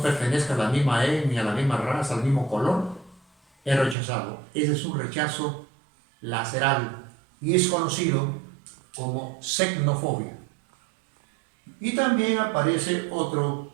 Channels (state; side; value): drops out; left; at 4.0 s